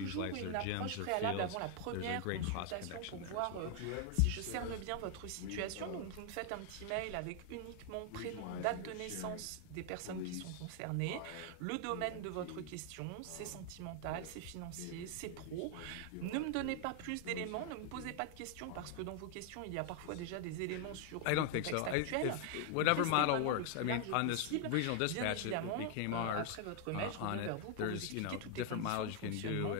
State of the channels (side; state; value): both; different; correlation 0.00